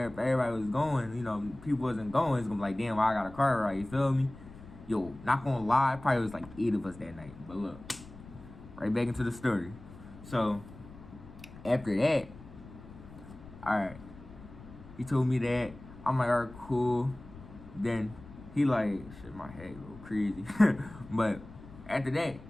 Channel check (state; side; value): noise; left; rumble, 17 dB below the sound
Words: everybody was going. People wasn't going. It's gonna be like, damn, why I got a car ride? You feel me? Yo, not gonna lie, probably was like 8 of us that night. But look, right back into the story. So after that, all right, he told me that. I'm like, all right, cool. Then he like, shit, my head go crazy. But after that,